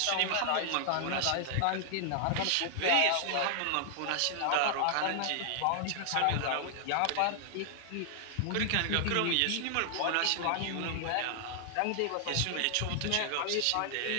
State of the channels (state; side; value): different; both; correlation 0.00